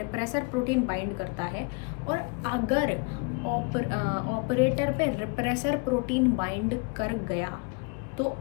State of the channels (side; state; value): right; quieter; 32.7 dB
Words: प्रोटीन बाइंड करता है। और अगर ऑपरेटर पे रिप्रेसर प्रोटीन बाइंड कर गया तो